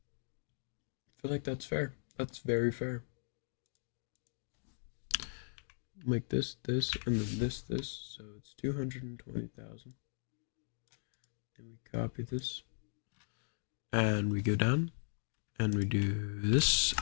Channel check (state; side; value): silent; right; digital silence